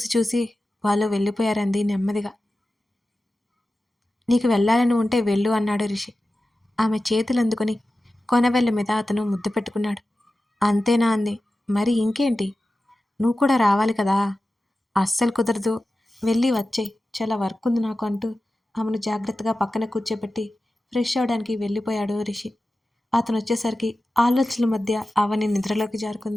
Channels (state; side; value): normal; both; correlation 0.94